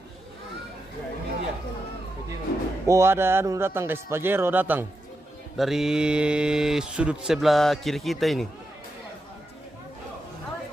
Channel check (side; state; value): both; normal; correlation 0.87